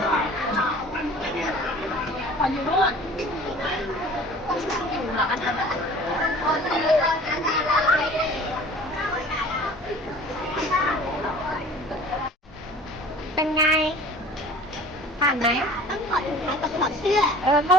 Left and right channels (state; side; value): normal; both; correlation 0.45